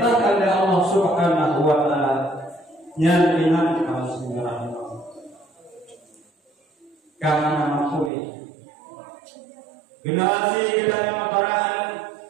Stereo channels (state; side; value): drops out; left; at 8.1 s